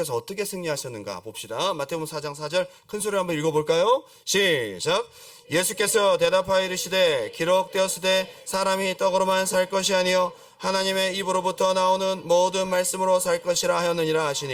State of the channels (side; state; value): both; identical; correlation 1.00